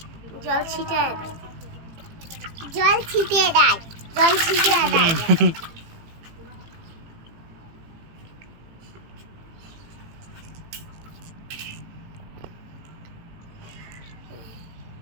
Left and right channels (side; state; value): left; late; 18 ms